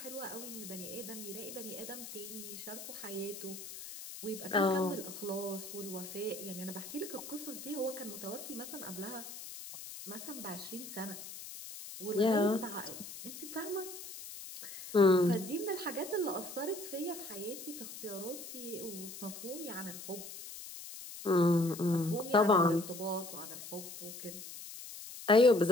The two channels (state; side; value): noise; left; hiss, 11 dB below the sound